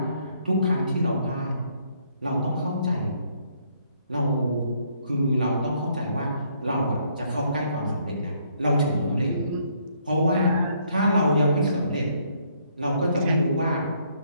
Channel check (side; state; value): both; inverted; correlation -0.68